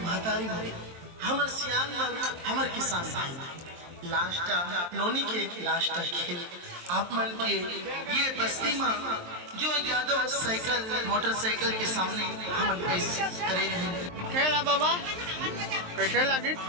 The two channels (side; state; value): left; late; 23 ms